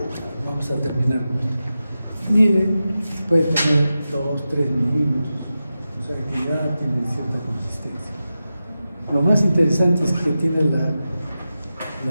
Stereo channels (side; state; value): both; inverted; correlation -0.92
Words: Vamos a terminar con esto. Mide, puede tener 2, 3 milímetros, o sea que ya tiene cierta consistencia. Lo más interesante es que tiene la